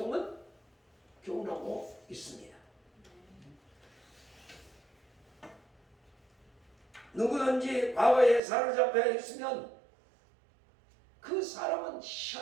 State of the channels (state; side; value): drops out; left; at 8.4 s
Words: 교훈하고 있습니다. 누구든지 과거에 사로잡혀 있으면 그 사람은